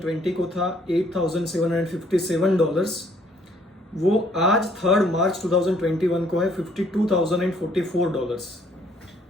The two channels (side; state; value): both; normal; correlation 0.64